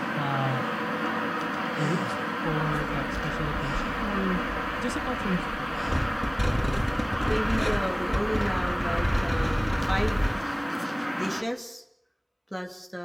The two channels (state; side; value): identical; both; correlation 1.00